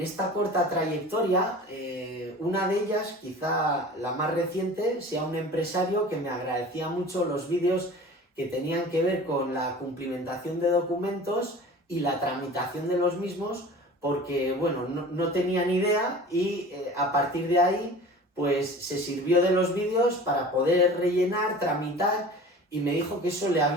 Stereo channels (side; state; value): both; normal; correlation 0.40